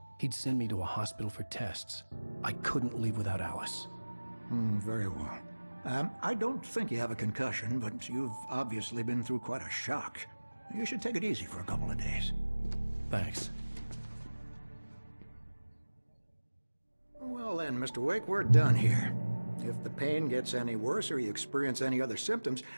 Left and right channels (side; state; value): both; inverted; correlation -1.00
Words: He'd send me to a hospital for tests. I couldn't leave without Alice. Very well. I don't think you have a concussion, but you've obviously been through quite a shock. You should take it easy for a couple of days. Thanks. Well then, Mr. Wake, we're done here. If the pain gets any worse or you experience any other symptoms,